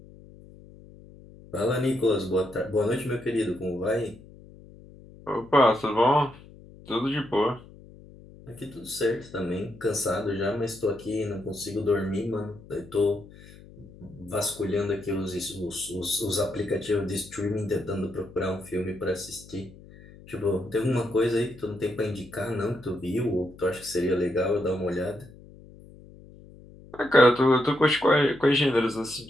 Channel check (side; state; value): left; noise; hum, 20 dB below the sound